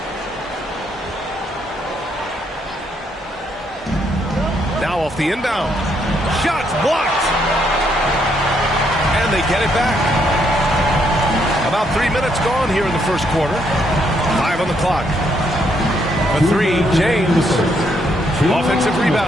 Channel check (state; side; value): normal; both; correlation 0.73